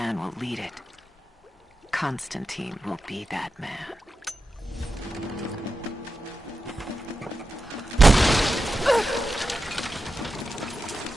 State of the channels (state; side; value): normal; both; correlation 0.90